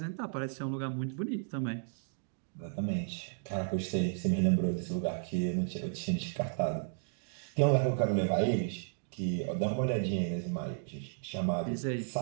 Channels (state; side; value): silent; left; digital silence